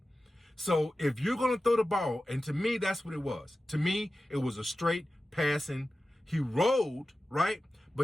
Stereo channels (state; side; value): normal; both; correlation 0.94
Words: So if you're going to throw the ball, and to me, that's what it was. To me, it was a straight passing. He rolled, right?